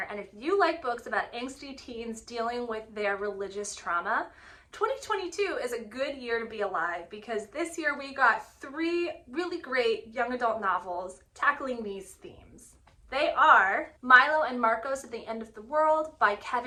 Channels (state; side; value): identical; both; correlation 1.00